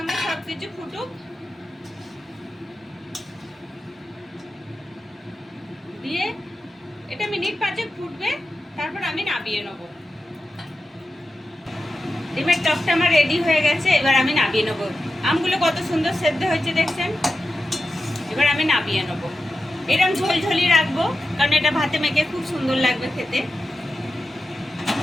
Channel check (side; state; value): both; normal; correlation 0.91